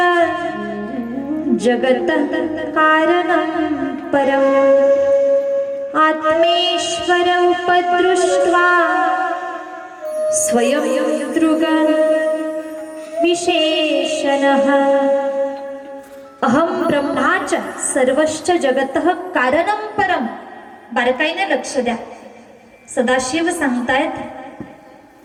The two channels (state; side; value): identical; both; correlation 1.00